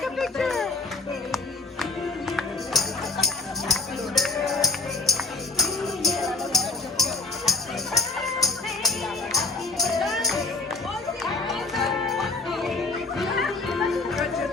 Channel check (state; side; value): quieter; right; 3.4 dB